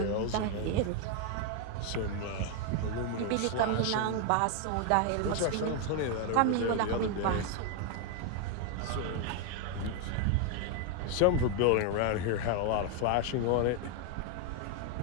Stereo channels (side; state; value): both; different; correlation 0.01